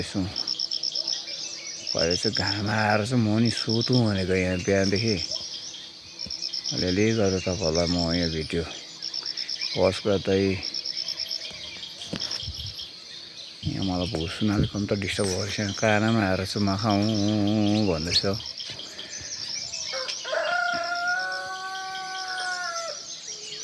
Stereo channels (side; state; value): both; identical; correlation 1.00